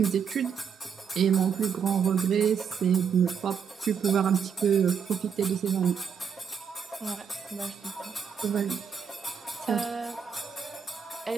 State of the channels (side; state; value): left; quieter; 7.0 dB